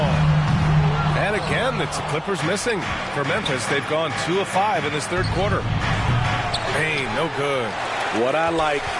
And again, it's the Clippers missing. For Memphis, they've gone 2 of 5 in this third quarter. Hey, no good. What I like,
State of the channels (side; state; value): both; identical; correlation 1.00